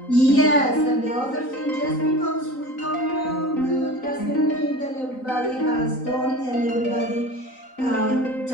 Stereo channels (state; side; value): late; right; 3.9 ms